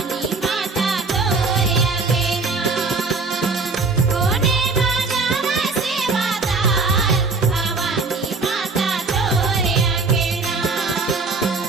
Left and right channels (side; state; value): left; quieter; 4.0 dB